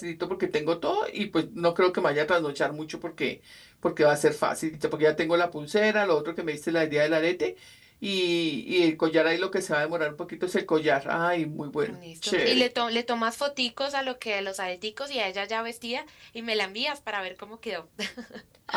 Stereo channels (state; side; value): identical; both; correlation 1.00